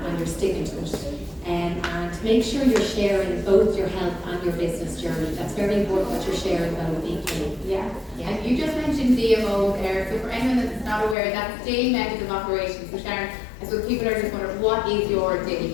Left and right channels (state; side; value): drops out; right; at 11.2 s